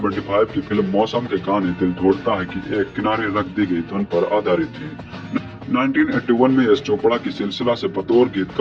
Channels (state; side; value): identical; both; correlation 1.00